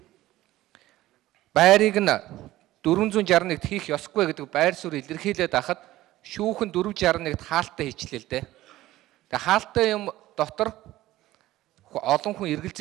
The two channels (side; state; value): left; quieter; 15.9 dB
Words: байрыг нь 461-т хийх ёсгүй гэдэг байр суурь илэрхийлээд байхад шүүхэн 461-т хаалттай хийчлээ л дээ. Тэгээ хаалттай юм дотор олон хүн